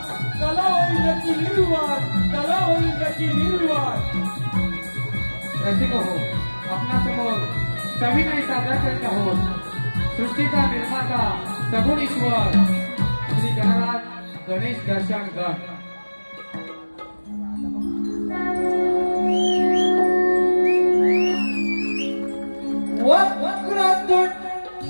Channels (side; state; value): both; inverted; correlation -1.00